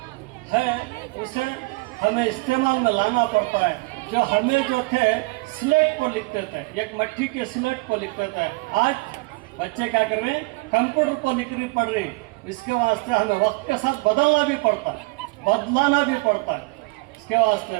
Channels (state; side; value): quieter; left; 26.4 dB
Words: है उसे हमें इस्तेमाल में लाना पड़ता है। जो हमें जो थे स्लेट पर लिखते थे एक मट्टी के स्लेट पर लिखते थे आज बच्चे क्या कर रहे हैं कंप्यूटर पर लिखनी पड़ रही। इसके वास्ते हमें वक्त के साथ बदलना भी पड़ता है बदलाना भी पड़ता है। इसके